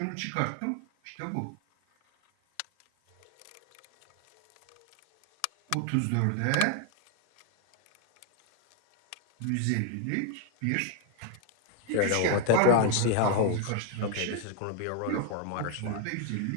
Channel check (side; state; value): both; different; correlation 0.00